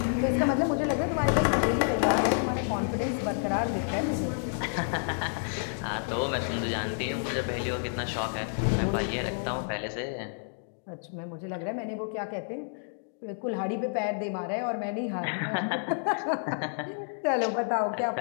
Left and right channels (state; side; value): silent; right; digital silence